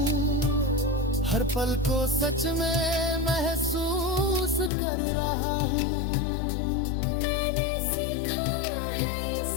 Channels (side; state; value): right; drops out; at 4.7 s